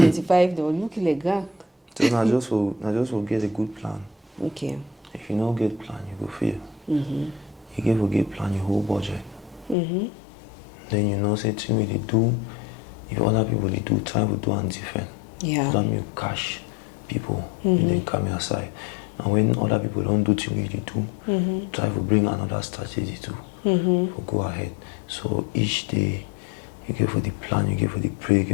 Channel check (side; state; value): right; drops out; at 9.8 s